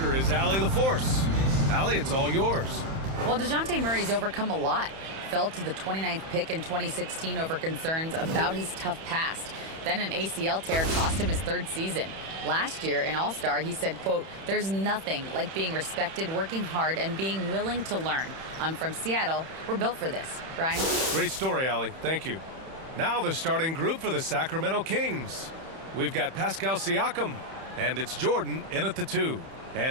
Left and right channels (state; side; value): late; left; 31 ms